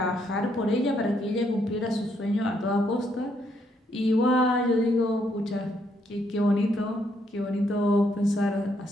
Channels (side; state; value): both; normal; correlation 0.74